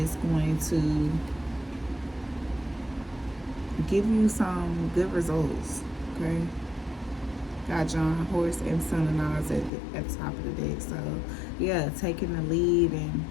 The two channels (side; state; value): right; drops out; at 9.7 s